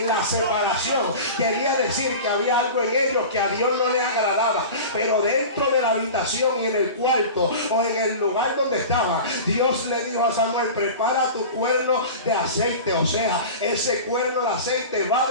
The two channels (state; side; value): inverted; both; correlation -0.34